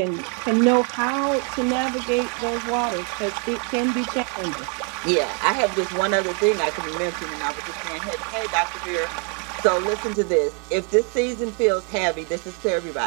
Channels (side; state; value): left; quieter; 35.9 dB